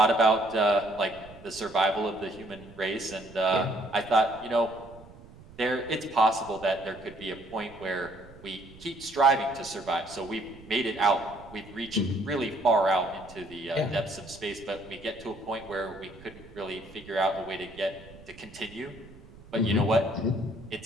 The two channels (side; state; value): right; noise; rumble, 20 dB below the sound